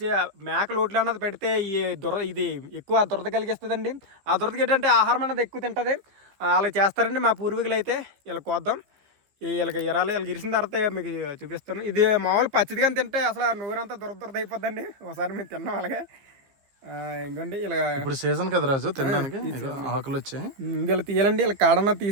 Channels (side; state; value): left; late; 15 ms